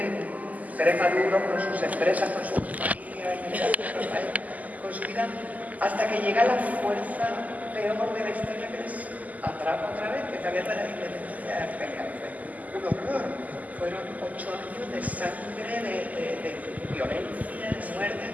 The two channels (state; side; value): late; left; 0.078 ms